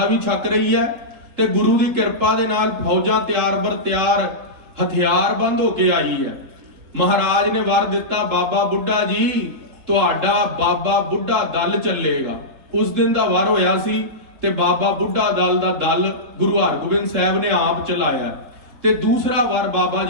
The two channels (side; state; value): left; late; 3.8 ms